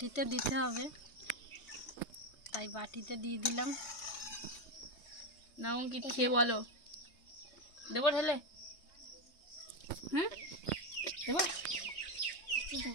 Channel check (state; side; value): late; right; 3.2 ms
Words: দিতে হবে, তাই বাটিতে দিয়ে দিলাম। না অঙ্কিত খেয়ে বলো, দেবো ঢেলে? হ্যাঁ দেবো?